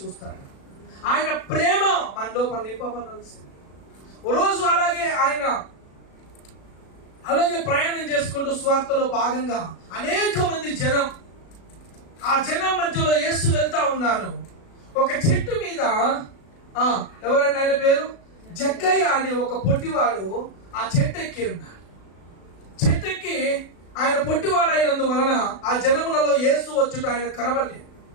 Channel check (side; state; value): right; late; 36 ms